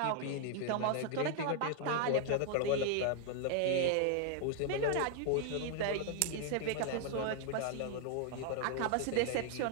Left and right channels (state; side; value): different; both; correlation 0.00